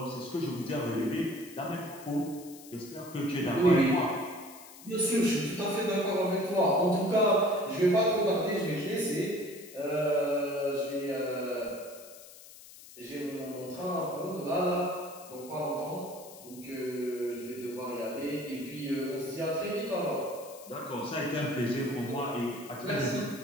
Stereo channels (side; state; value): left; noise; hiss, 18 dB below the sound